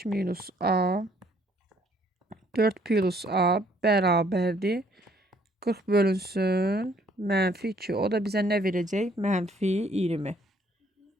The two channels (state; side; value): normal; both; correlation 0.63